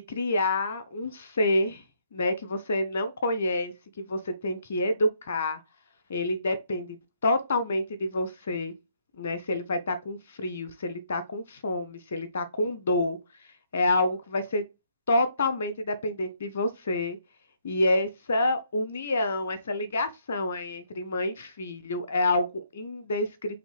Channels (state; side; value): inverted; both; correlation -0.72